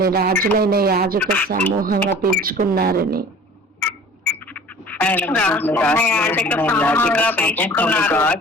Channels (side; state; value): both; normal; correlation 0.45